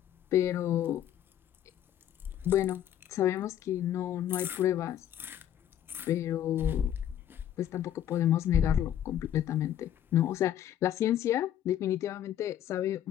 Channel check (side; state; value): right; quieter; 10.9 dB